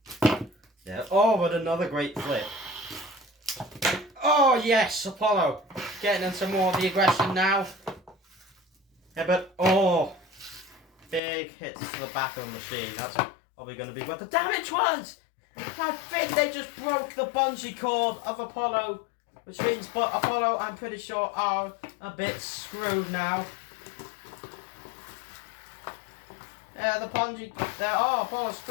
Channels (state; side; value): drops out; right; at 11.2 s